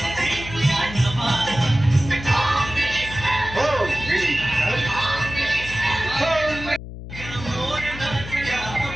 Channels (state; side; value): noise; left; hum, 11 dB below the sound